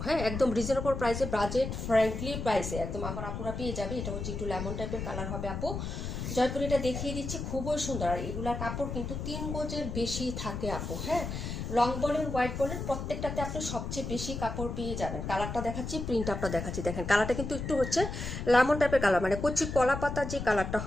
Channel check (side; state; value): left; noise; rumble, 5 dB below the sound